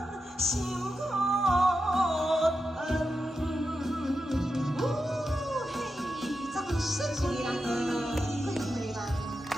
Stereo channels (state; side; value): normal; both; correlation 0.89